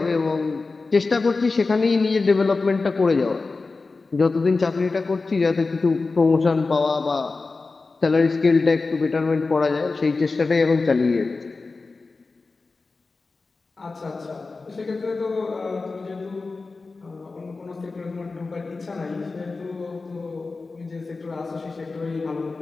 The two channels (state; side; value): quieter; right; 3.9 dB